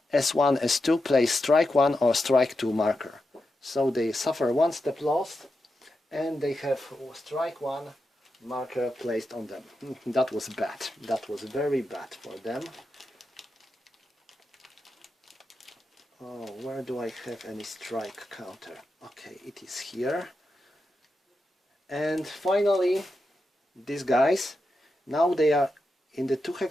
S1, S2 place strike 1 or strike 2 marker. So they suffer 1 step lost, and they have strike 1 marker placed on them. That was bad. That was very bad for them. Oh, where do I have any strike counter? Okay, it is here. And finally, these guys, now they are in the 2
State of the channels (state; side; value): normal; both; correlation 0.88